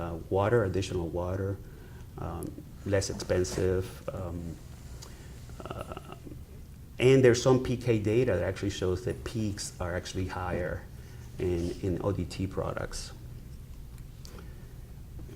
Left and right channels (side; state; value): both; identical; correlation 1.00